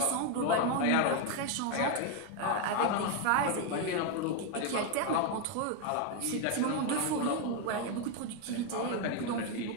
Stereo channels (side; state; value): both; different; correlation 0.01